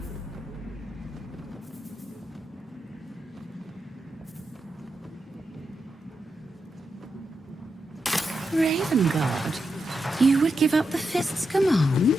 Ravengard, you would give up the Fist's command?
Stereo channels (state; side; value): normal; both; correlation 0.86